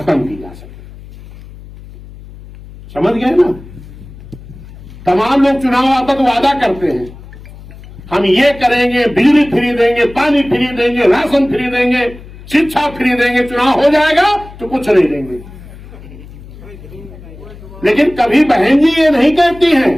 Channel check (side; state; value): left; noise; hum, 18 dB below the sound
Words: की जा सके। समझ गए ना? तमाम लोग चुनाव आता तो वादा करते हैं, हम ये करेंगे, बिजली फ्री देंगे, पानी फ्री देंगे, राशन फ्री देंगे, शिक्षा फ्री देंगे। चुनाव हो जाएगा तो कुछ नहीं देंगे। लेकिन कभी बहन जी ये नहीं कहती हैं,